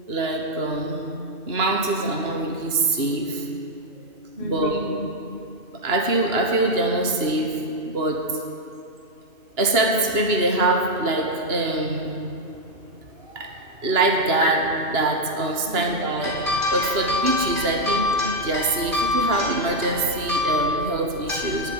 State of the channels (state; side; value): late; left; 2.9 ms